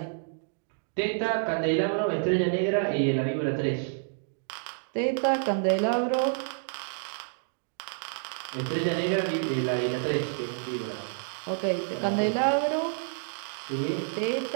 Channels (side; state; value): left; silent; digital silence